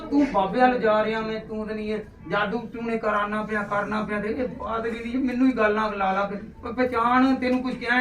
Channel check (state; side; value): identical; both; correlation 1.00